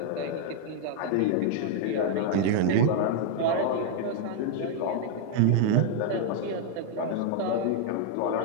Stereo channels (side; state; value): both; different; correlation 0.00